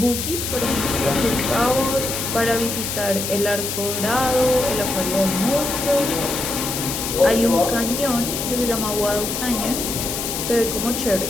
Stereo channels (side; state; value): left; noise; hiss, 4 dB below the sound